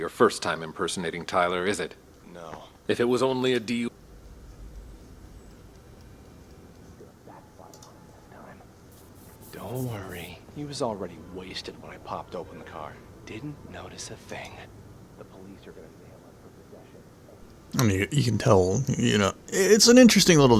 first time impersonating Tyler, is it? No. If it was only a DU... Don't worry. He was already wasted when I popped open the car. Didn't notice a thing. The police are gonna nail him for possession. I mean, you can tell, you know, it's an interesting little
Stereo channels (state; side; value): identical; both; correlation 1.00